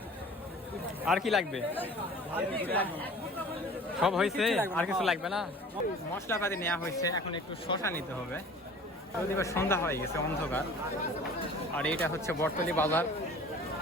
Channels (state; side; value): normal; both; correlation 0.45